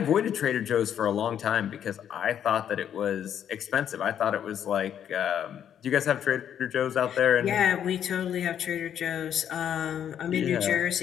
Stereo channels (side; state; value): right; quieter; 9.4 dB